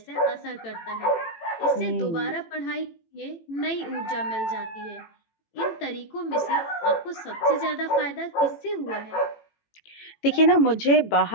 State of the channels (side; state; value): right; late; 18 ms